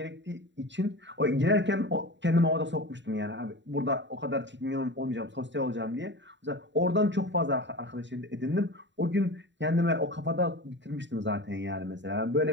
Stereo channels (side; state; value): left; late; 0.52 ms